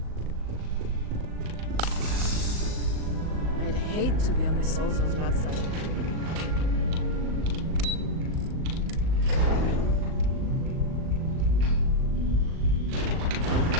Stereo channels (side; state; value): left; late; 38 ms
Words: I'd hate to be on Miss Olzo's bad side.